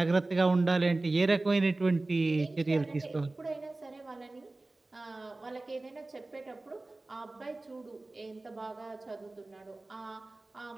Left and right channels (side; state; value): left; quieter; 3.0 dB